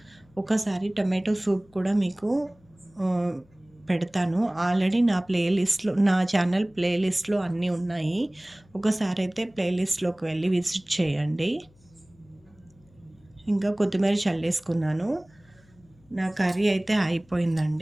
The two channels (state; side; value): noise; left; hum, 30 dB below the sound